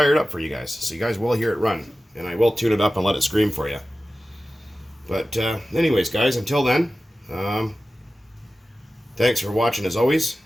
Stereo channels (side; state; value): both; normal; correlation 0.95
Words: it up for you guys. So you guys will hear it run. And I will tune it up and let it scream for you. But anyways, guys, until then, thanks for watching as always.